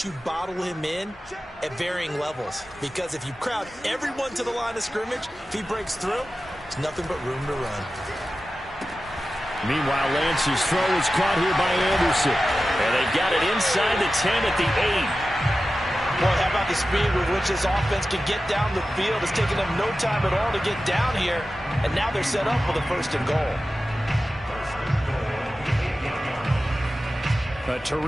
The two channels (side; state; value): both; normal; correlation 0.94